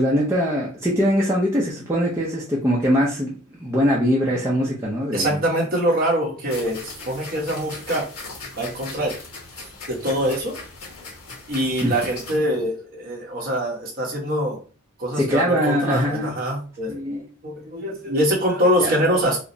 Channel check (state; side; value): normal; both; correlation 0.47